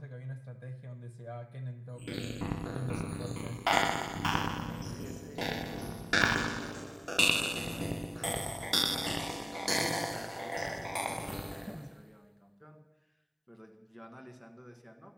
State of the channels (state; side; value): identical; both; correlation 1.00